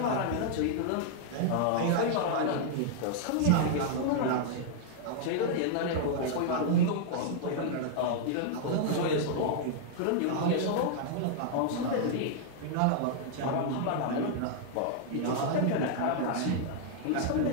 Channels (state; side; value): different; both; correlation -0.01